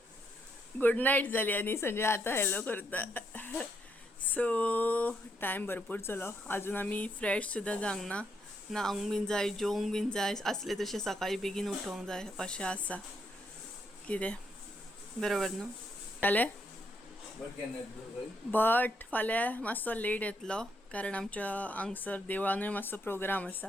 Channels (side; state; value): both; normal; correlation 0.76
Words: गुड नायट जाली आनी संजय आतां हॅलो करता. सो टायम भरपूर जालो, अजून आमी फ्रेश सुद्दां जावंक ना. न्हावंक बीन जाय, जेवंक बीन जाय असले तशें सकाळी बेगीन उठोवंक जाय अशें आसा. कितें बरोबर न्हू जालें. बट फाल्यां मातसो लेट येतलो कारण आमच्या हांगसर देवळानूय मातसो प्रोग्राम